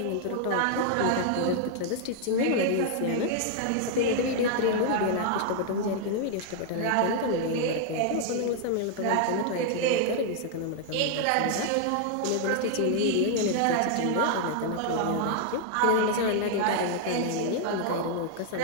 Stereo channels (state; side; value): different; both; correlation 0.00